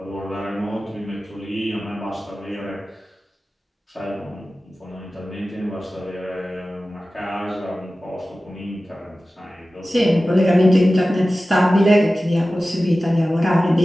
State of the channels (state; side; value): normal; both; correlation 0.96